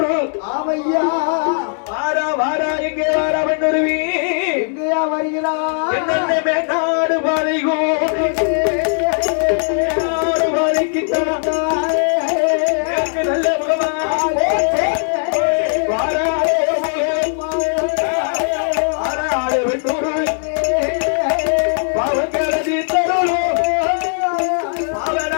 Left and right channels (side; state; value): right; silent; 67 dB below the other